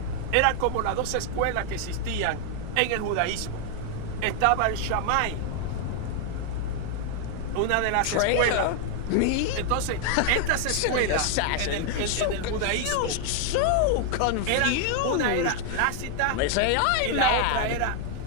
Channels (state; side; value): different; both; correlation 0.00